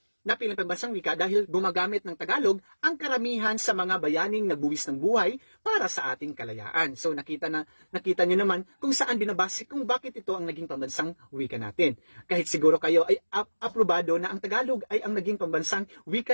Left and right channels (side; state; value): both; inverted; correlation -1.00